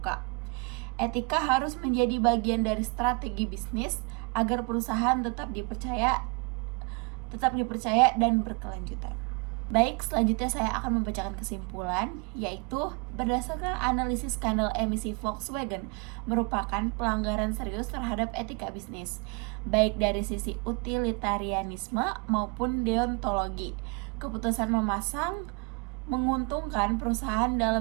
Etika harus menjadi bagian dari strategi bisnis agar perusahaan tetap dipercaya dan berkelanjutan. Baik, selanjutnya saya akan membacakan kesimpulan, yaitu berdasarkan analisis skandal emisi Volkswagen merupakan pelanggaran serius terhadap etika bisnis, baik dari sisi utilitarianisme maupun deontologi. Keputusan memasang menguntungkan perusahaan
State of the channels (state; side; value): quieter; left; 31.4 dB